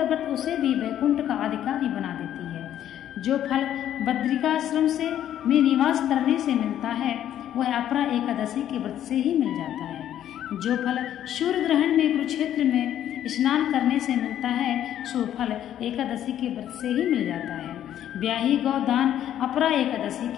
व्रत उसे भी वैकुंठ का अधिकारी बना देती है। जो फल बद्रिकाश्रम से में निवास करने से मिलता है वह अपरा एकादशी के व्रत से ही मिल जाता है। जो फल सूर्य ग्रहण में कुरुक्षेत्र में स्नान करने से मिलता है सो फल एकादशी के व्रत से ही मिल जाता है। ब्याही गौदान अपरा एकादशी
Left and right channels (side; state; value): right; quieter; 11.1 dB